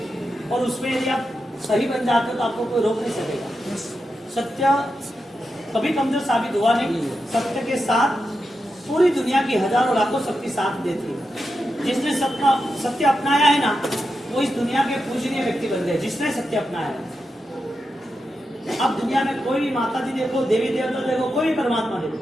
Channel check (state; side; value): normal; both; correlation 0.88